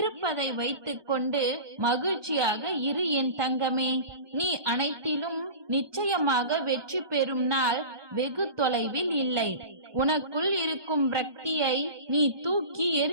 வைத்துக் கொண்டு மகிழ்ச்சியாக இரு என் தங்கமே. நீ அனைத்திலும் நிச்சயமாக வெற்றி பெறும் நாள் வெகு தொலைவில் இல்லை. உனக்குள் இருக்கும் பிரக்தியை நீ தூக்கி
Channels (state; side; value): late; left; 1.2 ms